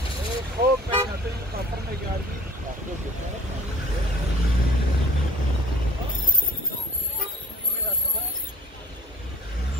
خوب میکنه تو این کافر میگردی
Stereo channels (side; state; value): both; normal; correlation 0.50